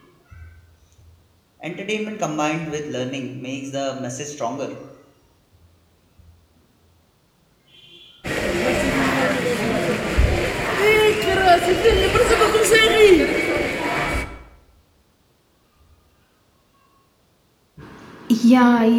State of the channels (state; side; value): identical; both; correlation 1.00